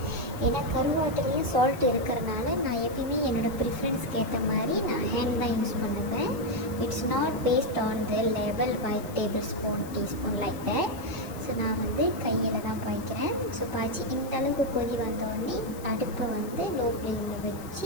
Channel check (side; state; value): left; noise; hiss, 18 dB below the sound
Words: ஏன்னா கருவாட்டிலையும் சால்ட் இருக்கிறனால நான் எப்பயுமே என்னோடய ப்ரிஃபரன்ஸ்க்கு ஏற்ற மாதிரி நான் ஹேண்ட் தான் யூஸ் பண்ணுவேன். It's not based on the level by tablespoon teaspoon like that. So நான் வந்து கையில் தான் பாய்க்கிறேன். ஸோ பாய்ச்சி இந்த அளவுக்கு கொதி வந்தோடனே அடுப்பை வந்து லோ ஃப்ளேமில்